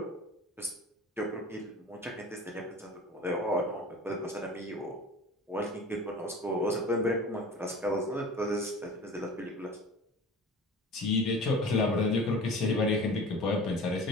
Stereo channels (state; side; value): normal; both; correlation 0.39